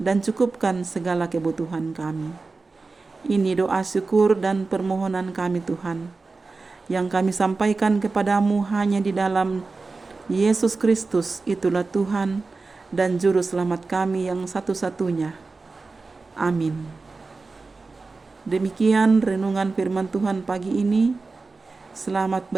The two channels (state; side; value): quieter; left; 3.9 dB